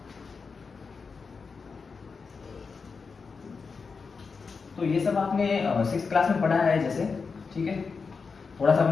तो ये सब आपने 6th क्लास में पढ़ा है जैसे, ठीक है। थोड़ा सा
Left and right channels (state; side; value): quieter; right; 5.0 dB